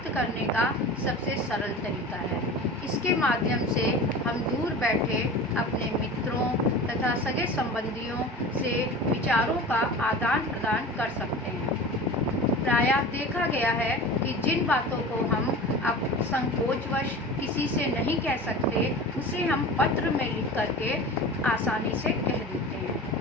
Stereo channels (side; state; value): both; normal; correlation 0.35